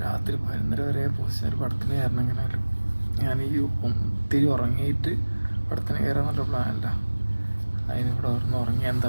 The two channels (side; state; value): both; inverted; correlation -1.00